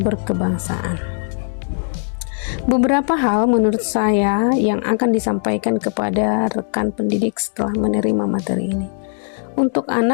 Beberapa hal menurut saya yang akan disampaikan kepada rekan pendidik setelah menerima materi ini. Untuk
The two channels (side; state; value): right; silent; digital silence